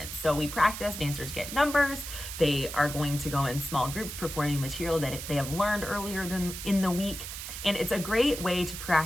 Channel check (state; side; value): noise; right; hiss, 8 dB below the sound